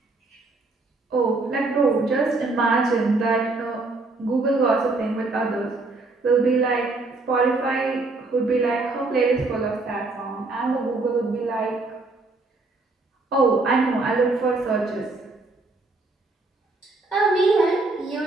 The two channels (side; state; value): left; quieter; 3.4 dB